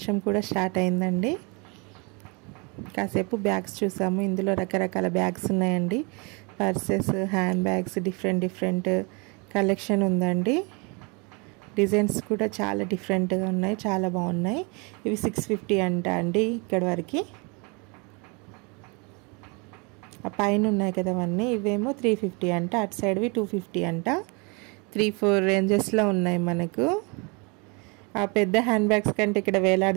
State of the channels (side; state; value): left; quieter; 30.7 dB